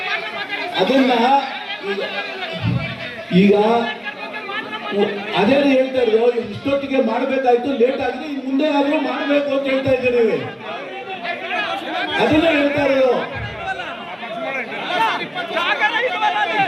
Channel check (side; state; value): both; identical; correlation 1.00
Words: ಅದನ್ನ ಈಗ ಅದೇ ಹೇಳ್ತಾ ಇದ್ರು. ಇಷ್ಟೊತ್ತಿಗೆ ಮಾಡಬೇಕಾಯ್ತು, ಲೇಟ್ ಆಗಿದೆ, ಇನ್ನು ಮುಂದೆ ಆದ್ರೂ ಮಾಡಬೇಕು ಅಂತ ಹೇಳ್ತಾ ಇದ್ದೀರಿ. ಅದನ್ನ ಹೇಳ್ತಾ ಇರೋದು.